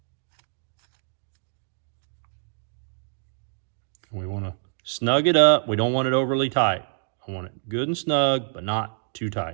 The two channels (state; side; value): silent; left; 61 dB below the other